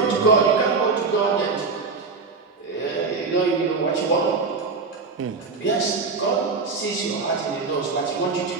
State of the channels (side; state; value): left; quieter; 4.5 dB